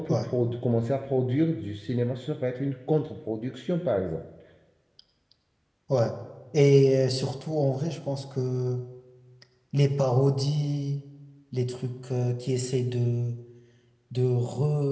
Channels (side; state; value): both; identical; correlation 1.00